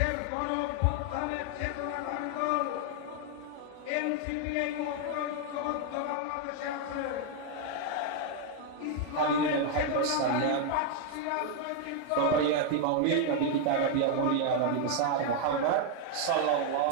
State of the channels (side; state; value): both; different; correlation 0.00